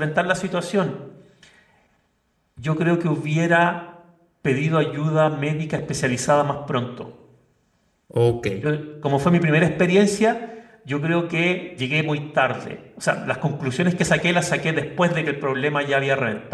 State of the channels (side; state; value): both; identical; correlation 1.00